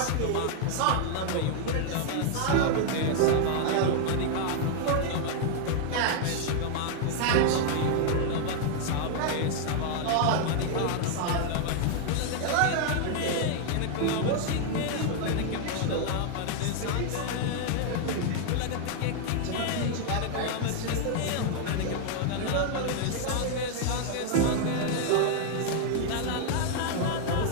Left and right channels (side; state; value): both; different; correlation 0.00